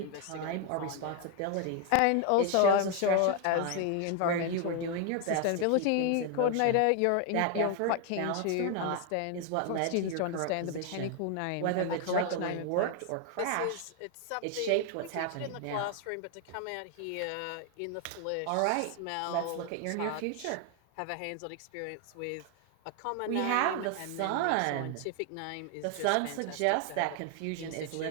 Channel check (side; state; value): both; different; correlation 0.00